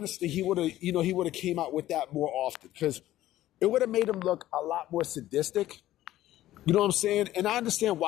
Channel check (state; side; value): quieter; right; 14.3 dB